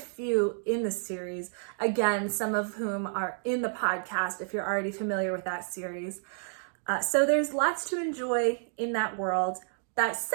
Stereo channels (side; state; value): left; silent; digital silence